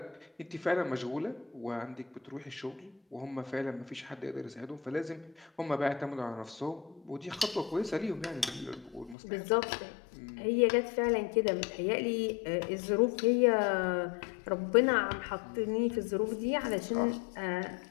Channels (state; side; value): drops out; right; at 9.2 s